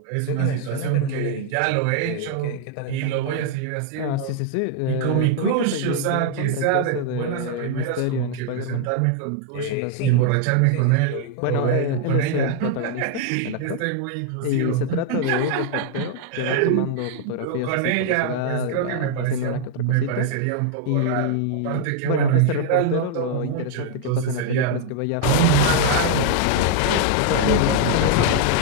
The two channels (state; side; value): different; both; correlation 0.00